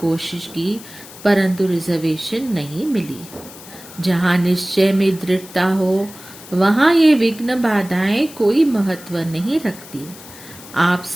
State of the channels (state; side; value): noise; left; hiss, 18 dB below the sound